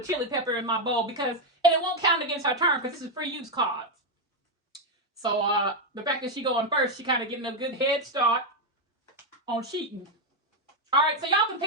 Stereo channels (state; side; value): normal; both; correlation 0.04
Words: chili pepper in my bowl and it won't count against her turn because this is free use cards. So the fact that she going first, she kind of getting a good head start on cheating. All right, so y'all can